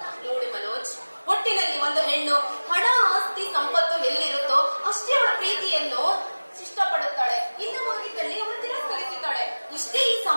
ನೋಡಿ ಮನೋಜ್, ಒಟ್ಟಿನಲ್ಲಿ ಒಂದು ಹೆಣ್ಣು ಹಣ ಆಸ್ತಿ ಸಂಪತ್ತು ಎಲ್ಲಿರುತ್ತೋ ಅಷ್ಟೇ ಅವಳ ಪ್ರೀತಿಯನ್ನು ಇಷ್ಟಪಡುತ್ತಾಳೆ. ಇಲ್ಲವಾಗಿದ್ದಲ್ಲಿ ಅವಳು ತಿರಸ್ಕರಿಸುತ್ತಾಳೆ. ಇಷ್ಟೇ ಈ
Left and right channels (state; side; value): inverted; both; correlation -1.00